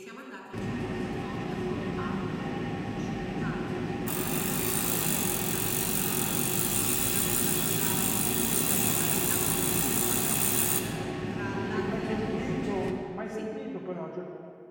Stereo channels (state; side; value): identical; both; correlation 1.00